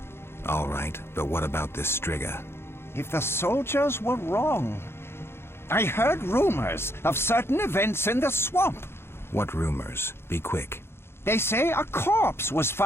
All right, but what about this striga? If the soldiers were wrong... I heard rumors of certain events in the swamp. What rumors? Be quick. They say a corpse was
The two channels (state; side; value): late; right; 0.12 ms